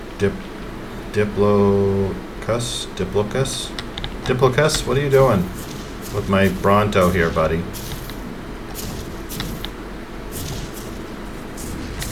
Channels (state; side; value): identical; both; correlation 1.00